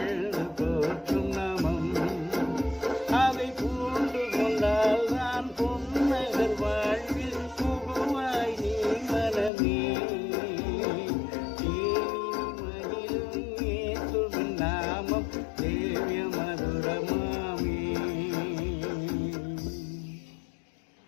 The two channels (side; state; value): right; drops out; at 9.5 s